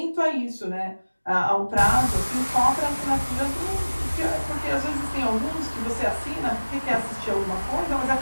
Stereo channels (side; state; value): both; inverted; correlation -1.00